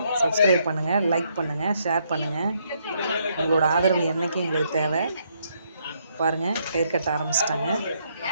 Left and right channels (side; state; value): both; inverted; correlation -0.74